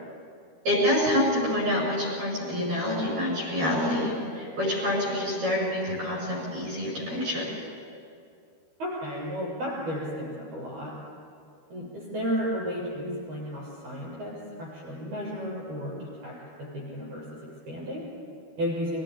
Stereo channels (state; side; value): late; left; 13 ms